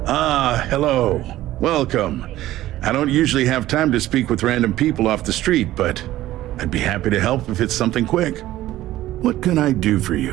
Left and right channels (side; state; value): left; quieter; 15.0 dB